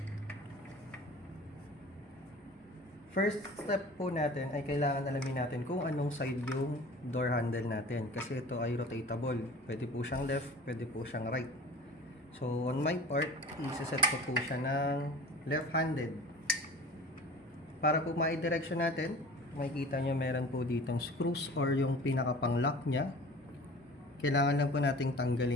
First step po natin ay kailangan alamin natin kung anong side yung door handle natin. Kasi ito ay rotatable. Pwede po siyang left, pwede po siyang right. So on my part, isa-set ko po siya ng left-handed. Para po ma-direction natin, makikita nyo meron po ditong screws or yung pinaka-pang lock nya. Kailangan lang po nating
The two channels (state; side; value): normal; both; correlation 0.41